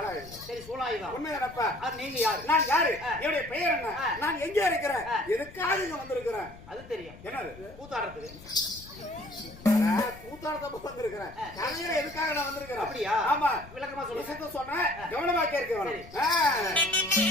சரி, சூலாயுதம். உண்மையாப்பா? நீங்க யாரு? நான் யாரு? என்னுடைய பெயர் என்ன? நான் எங்க இருக்கிறேன்? எதுக்காக இங்க வந்திருக்கிறேன்? அது தெரியும். என்னது? கூத்தாடுறதுக்கு. கூத்தாடுறதுக்கு வந்திருக்கிறேன். எதுக்காக நான் வந்திருக்கிறேன்? அப்படியா? ஆமா, விளக்கமா சொல்றேன். கவனமா கேட்க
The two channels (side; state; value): left; noise; rumble, 18 dB below the sound